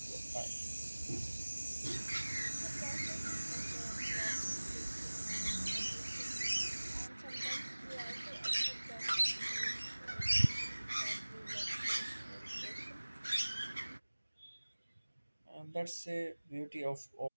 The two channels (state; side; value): inverted; both; correlation -1.00